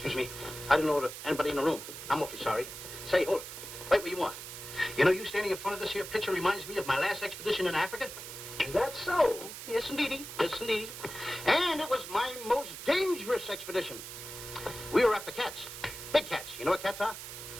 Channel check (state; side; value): noise; right; hiss, 10 dB below the sound